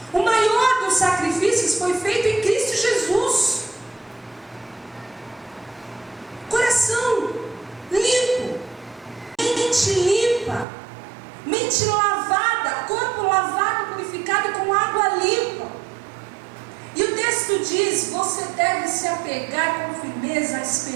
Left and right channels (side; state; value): left; drops out; at 10.7 s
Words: O maior dos sacrifícios foi feito em Cristo Jesus. Coração limpo, mente limpa, mente lavada, corpo lavado, purificado com água limpa. E o texto diz: você deve se apegar com firmeza à